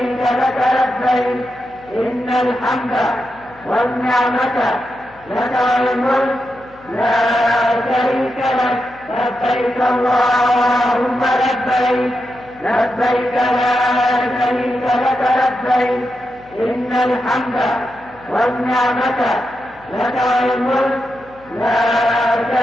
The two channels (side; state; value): left; noise; hum, 27 dB below the sound